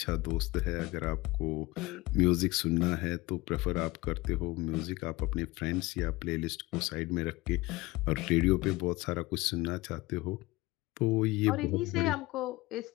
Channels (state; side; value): quieter; right; 20.9 dB